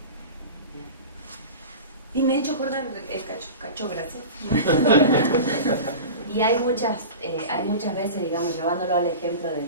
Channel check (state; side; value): inverted; both; correlation -0.32